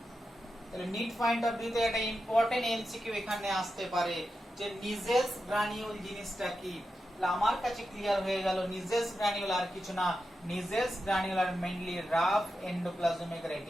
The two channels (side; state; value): both; normal; correlation 0.89